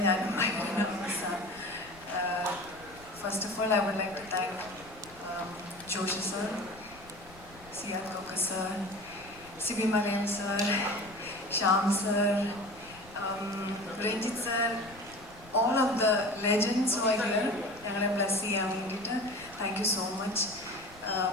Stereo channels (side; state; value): left; noise; rumble, 22 dB below the sound